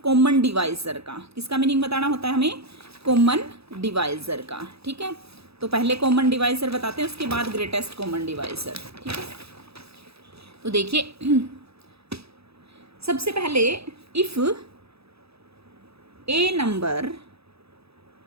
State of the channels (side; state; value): left; late; 0.78 ms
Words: कॉमन डिवाइजर का। किसका मीनिंग बताना होता है हमें, कॉमन डिवाइजर का। ठीक है, तो पहले कॉमन डिवाइजर बताते हैं, उसके बाद ग्रेटेस्ट कॉमन डिवाइजर। ठीक है, तो देखिए सबसे पहले if A number